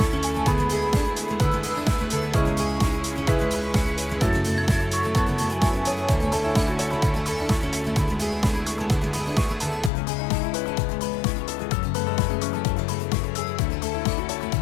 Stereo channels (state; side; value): drops out; right; at 9.9 s